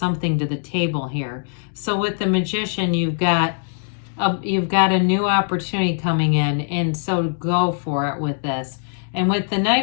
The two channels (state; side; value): silent; right; digital silence